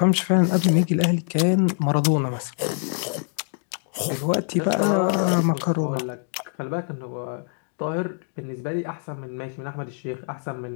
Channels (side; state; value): right; silent; 62 dB below the other